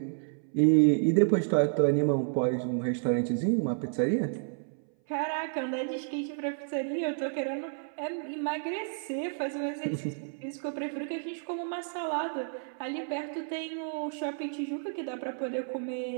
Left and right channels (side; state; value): left; silent; 57 dB below the other